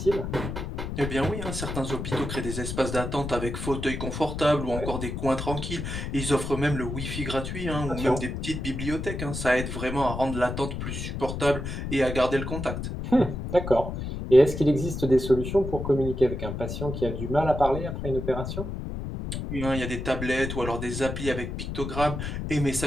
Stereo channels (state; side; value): noise; left; rumble, 5 dB below the sound